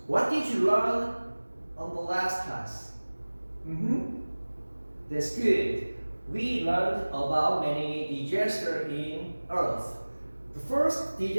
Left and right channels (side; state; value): both; inverted; correlation -1.00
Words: what did you learn on the last class? That's good. We learned about many disasters in Earth. The first